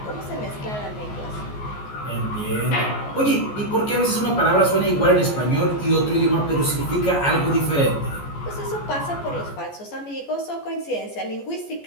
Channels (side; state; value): right; late; 14 ms